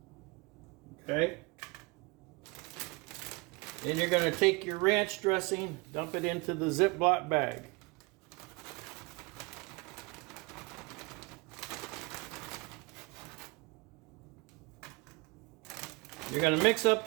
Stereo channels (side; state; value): left; quieter; 26.8 dB